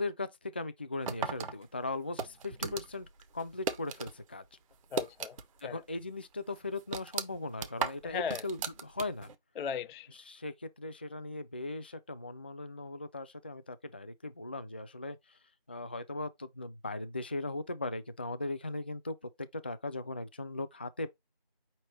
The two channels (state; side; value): inverted; both; correlation -0.46